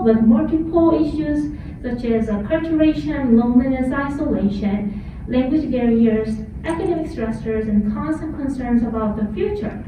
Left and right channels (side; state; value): both; identical; correlation 1.00